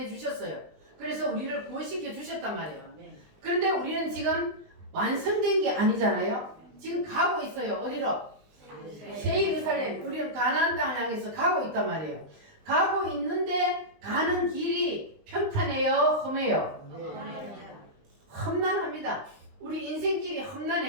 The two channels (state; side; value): late; left; 20 ms